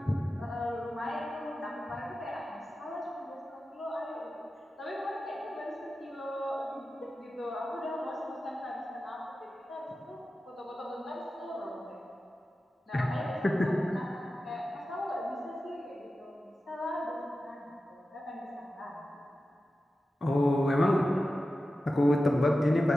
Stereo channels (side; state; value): both; normal; correlation 0.93